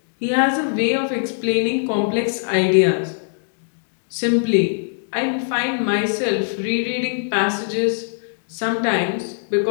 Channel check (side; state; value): right; silent; digital silence